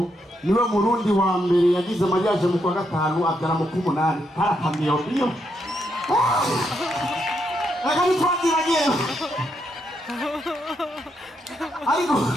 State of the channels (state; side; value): normal; both; correlation 0.79